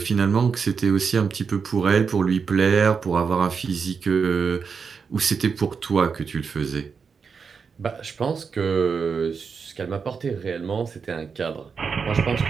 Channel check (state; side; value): quieter; left; 5.7 dB